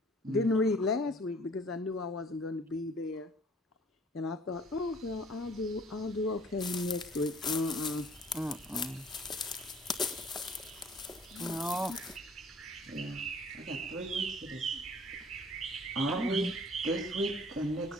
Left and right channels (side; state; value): both; normal; correlation 0.54